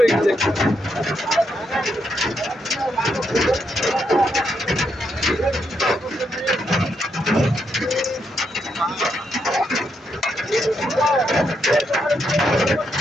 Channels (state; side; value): normal; both; correlation 0.80